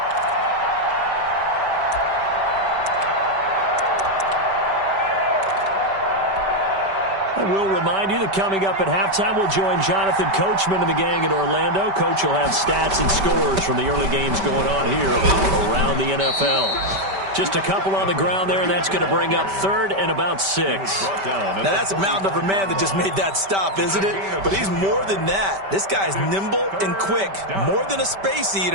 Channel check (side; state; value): left; late; 5.1 ms